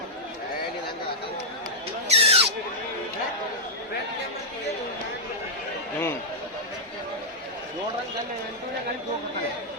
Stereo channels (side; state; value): both; normal; correlation -0.09